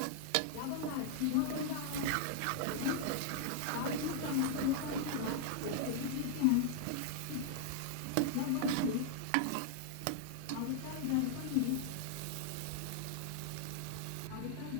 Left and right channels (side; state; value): both; different; correlation -0.01